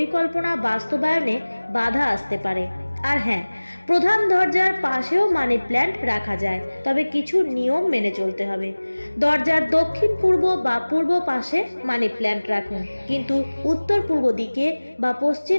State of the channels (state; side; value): inverted; both; correlation -1.00